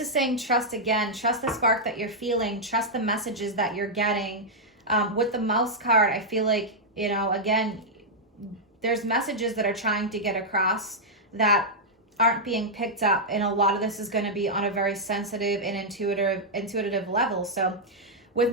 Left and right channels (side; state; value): both; normal; correlation -0.06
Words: saying trust again. Trust the spark that you're feeling. Trust the messages that you're getting. With the Mouse card, I feel like, again, there's messages that are trying to get across that aren't being picked up. And a lot of this is going to be on a very sensitive and intuitive level. So